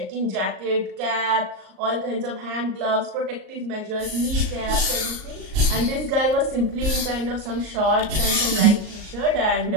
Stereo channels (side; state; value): left; late; 38 ms